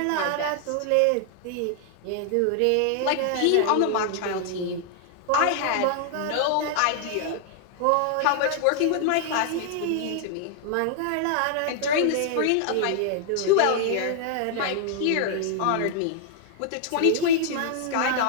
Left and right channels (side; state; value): both; different; correlation -0.01